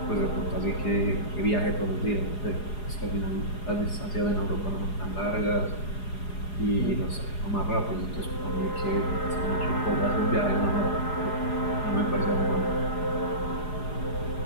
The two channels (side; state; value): right; late; 4.8 ms